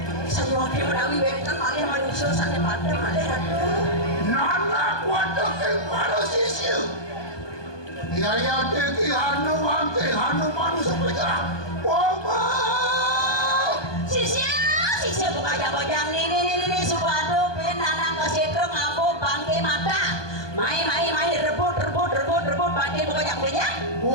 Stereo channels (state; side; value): late; right; 1.2 ms